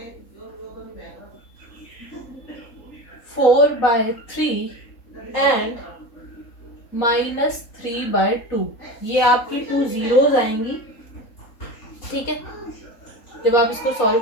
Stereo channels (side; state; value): right; late; 3.8 ms